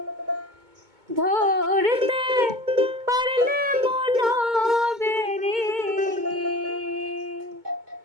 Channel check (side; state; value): left; late; 2.2 ms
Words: ধরতে পারলে মনো বেরি,